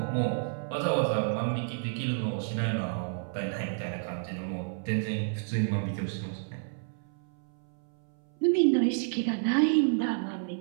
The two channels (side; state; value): left; silent; 58 dB below the other